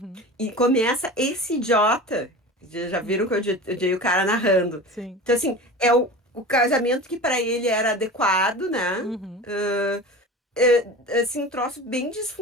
E começa esse idiota. Já viram que uhum, eu odiei o cara narrando. sim, Então, assim, é o casamento que pra ele era adequado, né? uhum, Assim, um troço bem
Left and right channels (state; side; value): normal; both; correlation 0.34